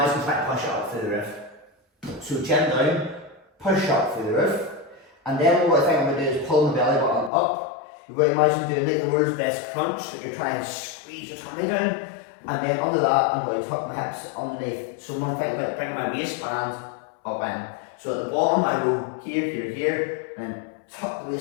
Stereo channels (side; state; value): right; drops out; at 7.3 s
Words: trying to push it up through the roof. So chin down, push up through the roof, and then what I think I'm going to do is pull my belly button up. You've got to imagine doing like the world's best crunch, that you're trying to squeeze your tummy down, and then under that I'm going to tuck my hips underneath. So I'm going to think about bringing my waistband up in. So at the bottom I go here, here, here, and then tuck the